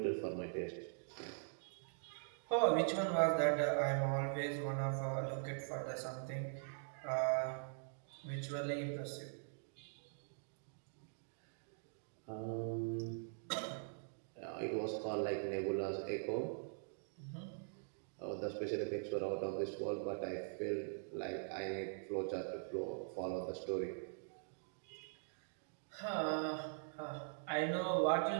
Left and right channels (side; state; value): left; silent; digital silence